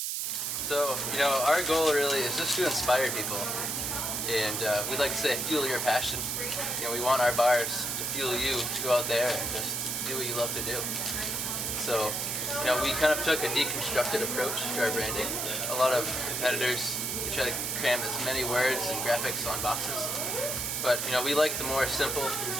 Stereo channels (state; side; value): noise; right; hiss, 1 dB below the sound